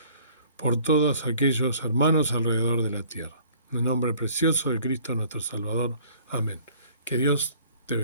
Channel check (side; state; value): both; inverted; correlation -0.55